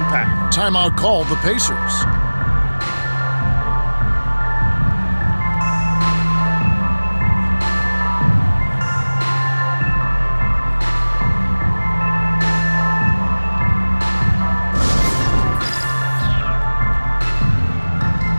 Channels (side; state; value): both; inverted; correlation -1.00